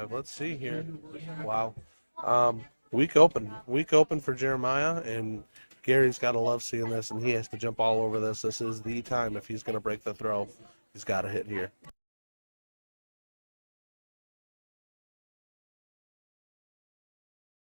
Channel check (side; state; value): both; inverted; correlation -1.00